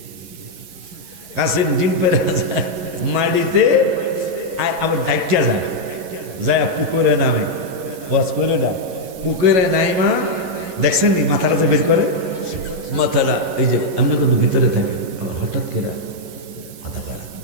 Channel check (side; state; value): left; late; 11 ms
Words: কাসিম ডিম পাইরা যায় মাটিতে, আবার ডাইকা যায় পুকুরে নামে, ওয়াজ করে না, পুকুরে নাইমা দেখছেন নি মাথাটা যে বের করে, মাথাটা এই যে আমরা কিন্তু ভিতরে থাকি, আবার হঠাৎ করে